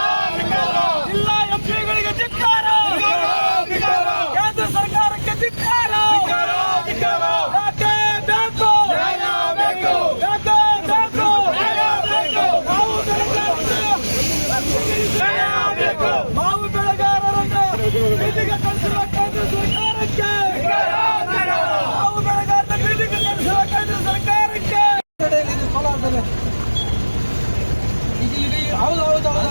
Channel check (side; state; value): both; inverted; correlation -1.00